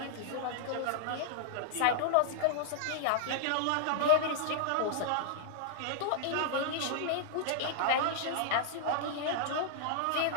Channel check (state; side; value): different; both; correlation -0.02